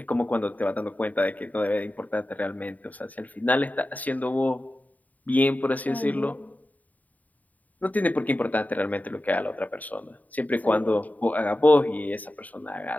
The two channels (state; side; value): late; right; 0.075 ms